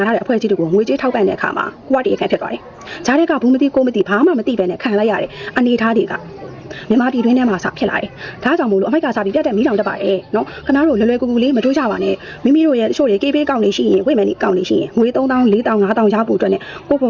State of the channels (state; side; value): identical; both; correlation 1.00